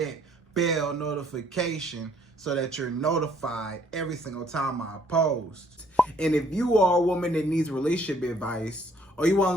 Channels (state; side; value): normal; both; correlation 0.63